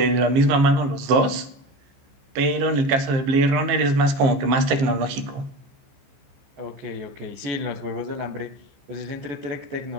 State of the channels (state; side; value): late; left; 15 ms